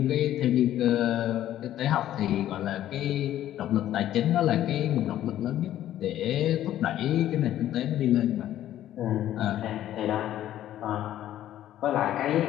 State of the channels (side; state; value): right; quieter; 12.5 dB